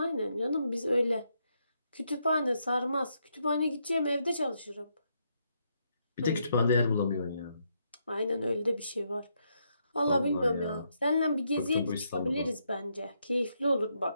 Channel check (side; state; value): both; inverted; correlation -0.78